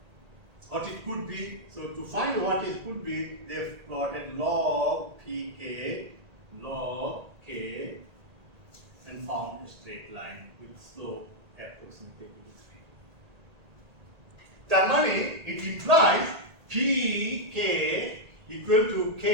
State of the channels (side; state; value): left; late; 1.8 ms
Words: what it could be. So to find what it could be, they plotted log pk, log k, and found a straight line with slope approximately equal to 3. That means it implies pk equal to k